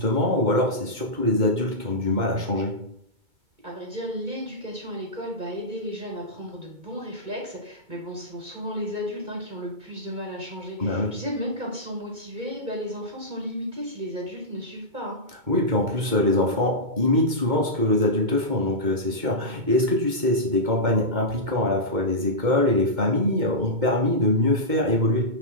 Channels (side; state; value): left; late; 2.2 ms